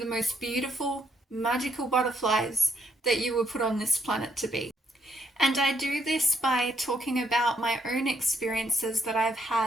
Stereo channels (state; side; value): normal; both; correlation 0.74